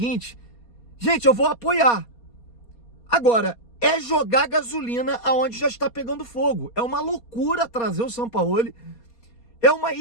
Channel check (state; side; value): late; right; 4.2 ms